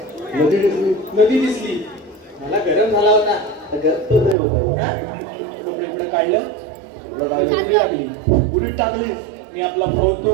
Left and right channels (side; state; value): left; drops out; at 4.4 s